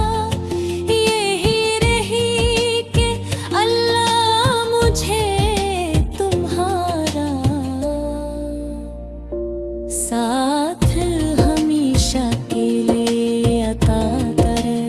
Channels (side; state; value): both; identical; correlation 1.00